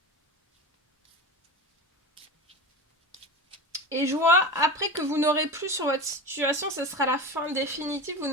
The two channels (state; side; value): normal; both; correlation 0.28